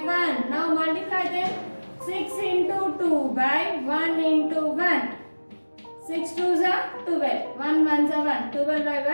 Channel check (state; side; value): inverted; both; correlation -1.00